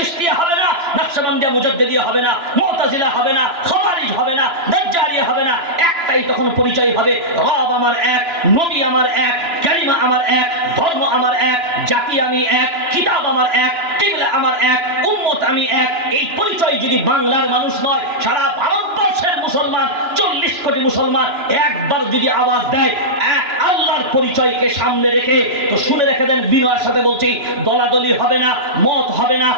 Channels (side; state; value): left; late; 2.9 ms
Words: হবে না, নকশবন্দিয়া মুজাদ্দিদিয়া হবে না, মুতাজিলা হবে না, খাওয়ারিজ হবে না, দাজ্জালিয়া হবে না। একটাই তখন পরিচয় হবে, রব আমার এক, নবী আমার এক, কালিমা আমার এক, ধর্ম আমার এক, জাতি আমি এক, কিতাব আমার এক, কিবলা আমার এক, উম্মত আমি এক। এই পরিচয় যদি বাংলার মানুষ নয়, সারা ভারতবর্ষের মুসলমান 40 কোটি মুসলমান একবার যদি আওয়াজ দেয় এক আল্লাহর পরিচয়কে সামনে রেখে, তো শুনে রেখে দেন, বিনয়ের সাথে বলছি, দলাদলি হবে না, মত হবে না,